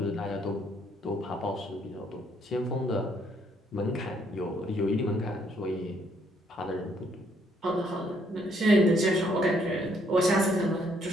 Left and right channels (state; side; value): normal; both; correlation 0.68